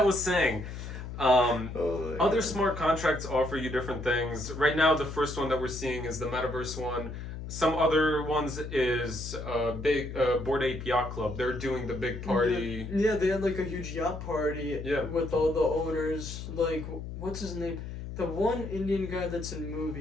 was saying, other smart contracts offer you different things. Right now, the first one that we're seeing is the Metaverse one. Some other ones is Bored Ape Yacht Club. They're doing the big party. Yeah, they had, like, a huge yacht party with all the owners. Like, what's his name? The one Indian guy that's in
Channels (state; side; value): noise; left; hum, 8 dB below the sound